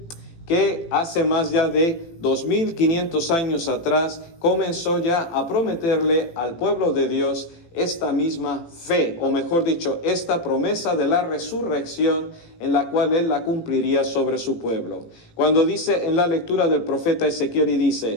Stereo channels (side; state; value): right; late; 18 ms